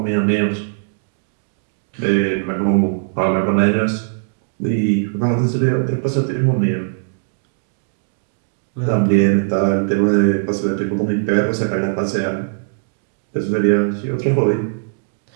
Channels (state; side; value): silent; left; digital silence